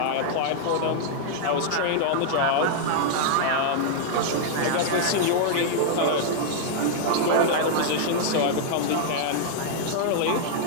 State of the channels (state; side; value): different; both; correlation -0.01